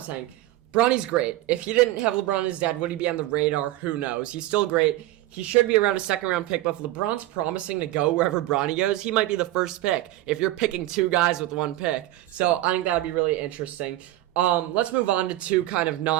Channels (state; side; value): quieter; left; 16.0 dB